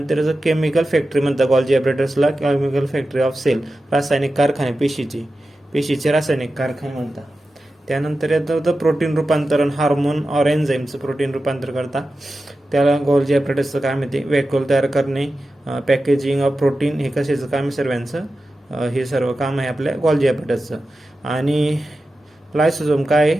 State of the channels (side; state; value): both; normal; correlation 0.93